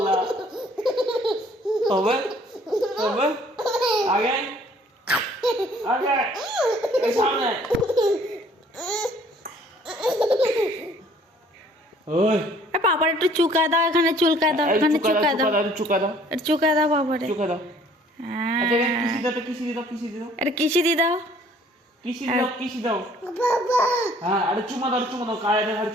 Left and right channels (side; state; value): both; normal; correlation 0.57